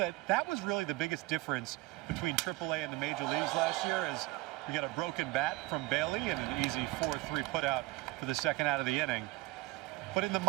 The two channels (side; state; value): left; quieter; 20.7 dB